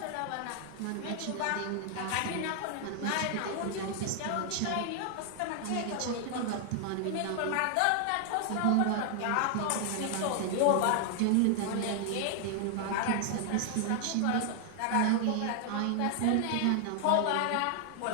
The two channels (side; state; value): both; different; correlation 0.00